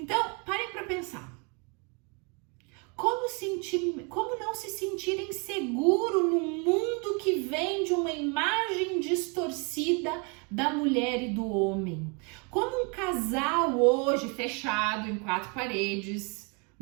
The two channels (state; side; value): quieter; left; 33.3 dB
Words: parem para pensar. Como não se sentir inseguro num mundo que vem de uma imagem distorcida da mulher e do homem? Como um casal hoje fechado em quatro paredes,